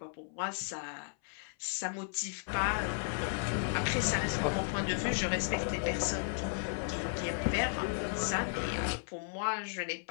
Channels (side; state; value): right; silent; 55 dB below the other